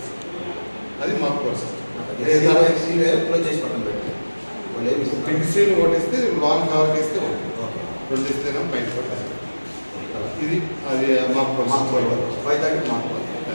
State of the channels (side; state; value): both; inverted; correlation -1.00